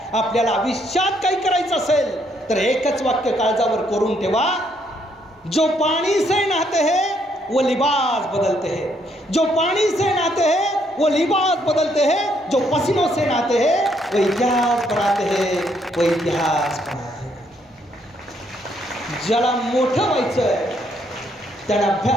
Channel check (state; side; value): normal; both; correlation 0.71